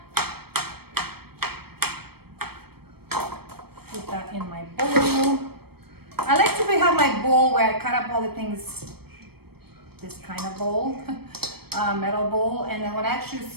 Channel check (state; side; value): late; left; 0.96 ms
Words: Put that in my bowl. I like to have my bowl where I cut up all the things, this kind of bowl, metal bowl, and then when I actually